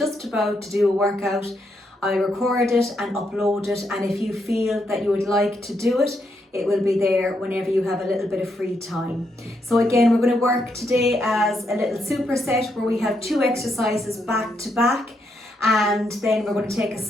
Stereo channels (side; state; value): both; normal; correlation 0.79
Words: about to do a workout. I record it and upload it, and if you feel that you would like to do it, it will be there whenever you have a little bit of free time. So again, we're going to work today as a little superset where we have 2 exercises back to back, and then we're going to take a